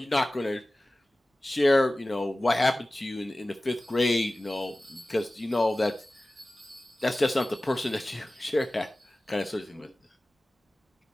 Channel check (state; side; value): normal; both; correlation 0.97